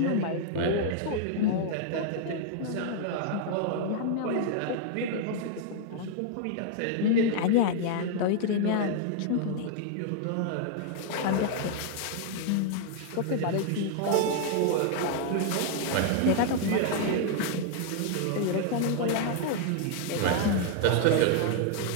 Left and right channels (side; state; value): both; different; correlation 0.00